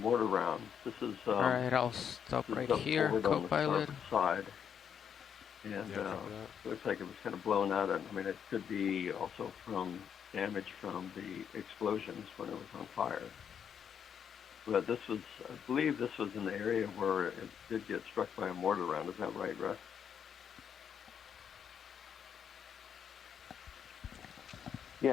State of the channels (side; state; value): right; quieter; 8.0 dB